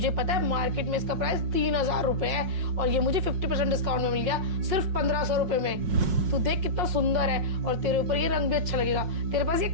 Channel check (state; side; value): late; left; 5.5 ms